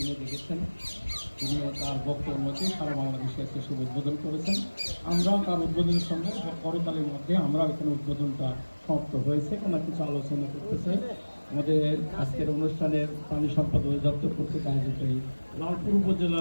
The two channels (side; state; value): both; inverted; correlation -1.00